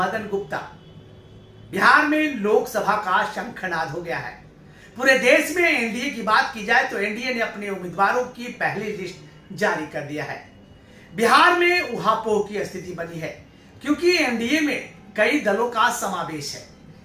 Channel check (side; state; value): both; identical; correlation 1.00